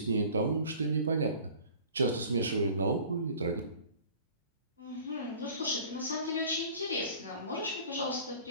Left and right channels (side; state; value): both; inverted; correlation -0.46